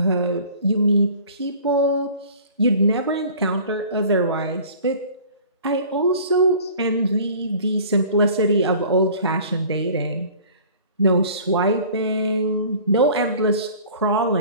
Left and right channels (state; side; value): inverted; both; correlation -0.47